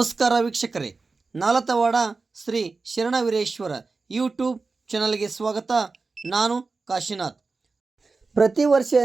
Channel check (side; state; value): left; quieter; 4.1 dB